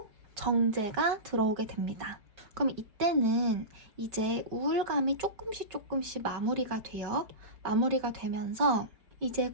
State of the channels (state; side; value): late; left; 4.7 ms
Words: 정제가 들어오게 됩니다. 그럼 이때는 이제 우울감이 조금씩 조금씩 마무리가 돼요. 마무리가 되면서 이제